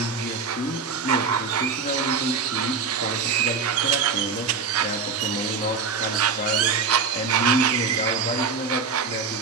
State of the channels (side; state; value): left; quieter; 5.2 dB